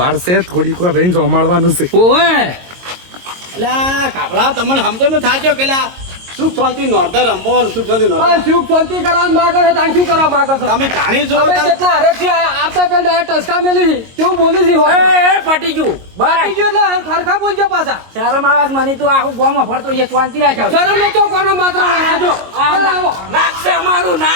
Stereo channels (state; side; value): late; left; 22 ms